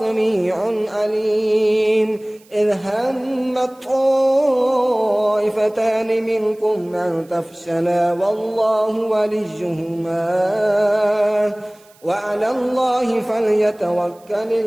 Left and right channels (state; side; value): noise; right; hiss, 29 dB below the sound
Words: عليم إذ همت طائفتان منكم أن تفشلا والله وليهما وعلى الله فليتوكل